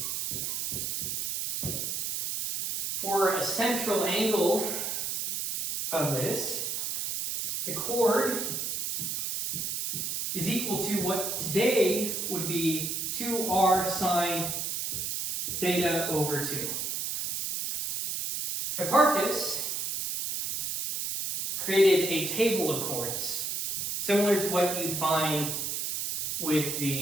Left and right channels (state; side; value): noise; right; hiss, 2 dB below the sound